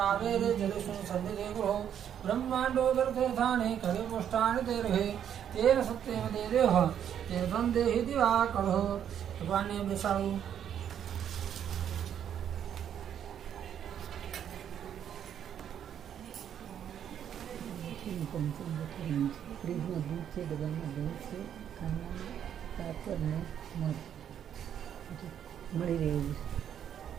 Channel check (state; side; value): quieter; left; 9.3 dB